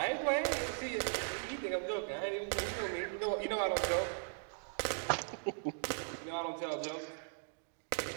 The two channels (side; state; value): left; silent; digital silence